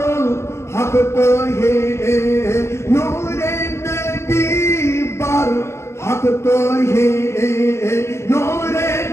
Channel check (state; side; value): late; right; 0.13 ms